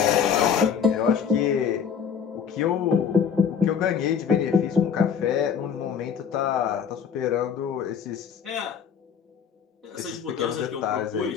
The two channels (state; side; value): quieter; right; 7.3 dB